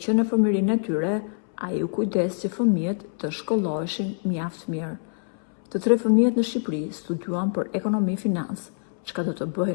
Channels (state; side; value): silent; right; 62 dB below the other